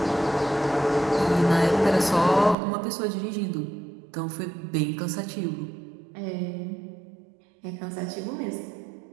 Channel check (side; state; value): left; drops out; at 2.6 s